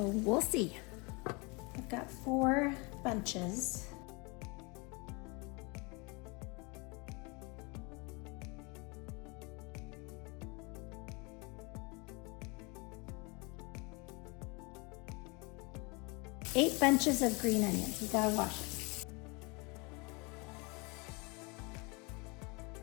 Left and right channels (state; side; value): quieter; right; 29.1 dB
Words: we'll see. I've got 4 bunches. Eight bunches of green onions. You gotta wash it.